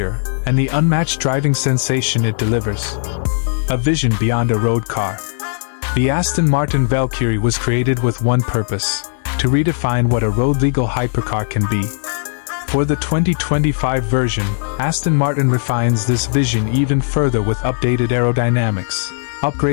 and the unmatched driving sensation it delivers. A vision beyond a road car. The Aston Martin Valkyrie was created with one purpose: to redefine what a road-legal hypercar can be. For the 2025 version, Aston Martin refines this vision even further with updated aerodynamics,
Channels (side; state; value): right; silent; digital silence